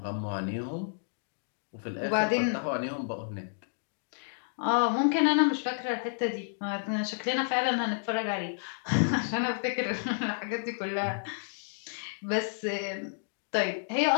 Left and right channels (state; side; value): silent; right; digital silence